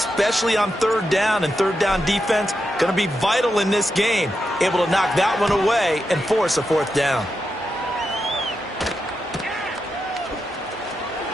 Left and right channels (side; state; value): both; normal; correlation 0.87